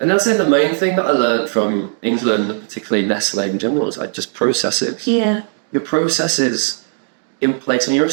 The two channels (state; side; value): silent; left; 62 dB below the other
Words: And that's the main thing that I learned from England, particularly Nestle in general, is like just processes. Yeah. Your processes in place, when you're a